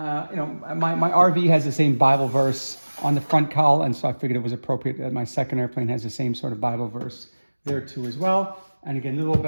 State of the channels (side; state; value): both; inverted; correlation -1.00